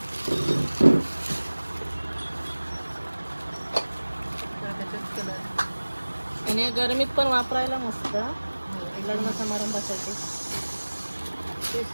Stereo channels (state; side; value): inverted; both; correlation -1.00